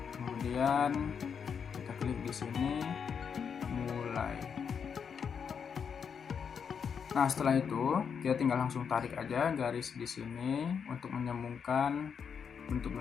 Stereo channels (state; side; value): quieter; right; 6.8 dB